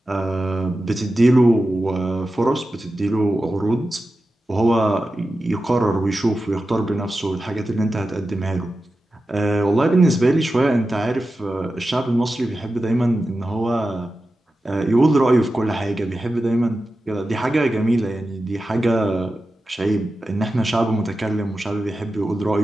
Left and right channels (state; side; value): normal; both; correlation 0.92